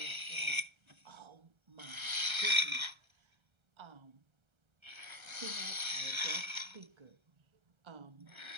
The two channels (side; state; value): left; late; 1.3 ms